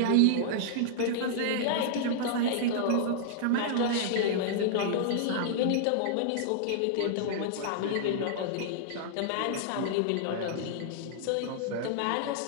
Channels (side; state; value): both; different; correlation -0.01